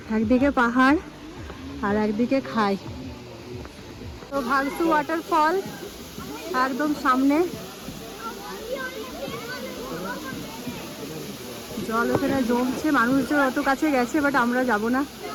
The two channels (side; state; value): both; identical; correlation 1.00